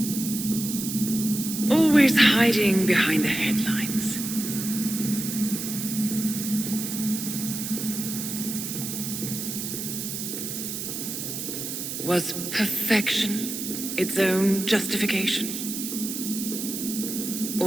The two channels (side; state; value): right; noise; hiss, 5 dB below the sound